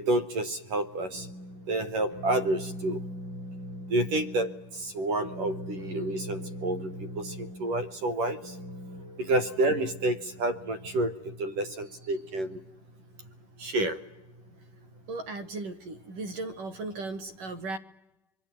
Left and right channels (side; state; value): left; late; 11 ms